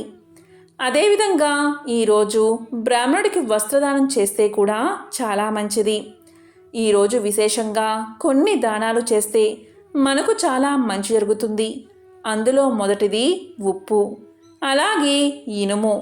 అదేవిధంగా ఈరోజు బ్రాహ్మణుడికి వస్త్రదానం చేస్తే కూడా చాలా మంచిది. ఈరోజు విశేషంగా కొన్ని దానాలు చేస్తే మనకు చాలా మంచి జరుగుతుంది. అందులో మొదటిది ఉప్పు, అలాగే ఇనుము,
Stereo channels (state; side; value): identical; both; correlation 1.00